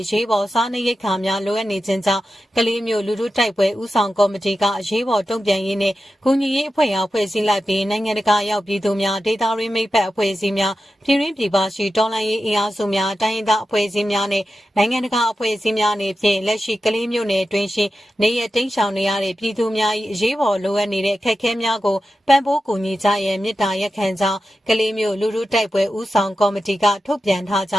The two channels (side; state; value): both; normal; correlation 0.92